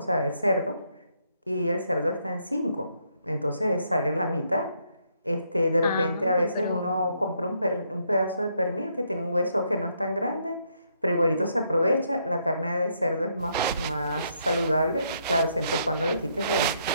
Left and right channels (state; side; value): inverted; both; correlation -0.74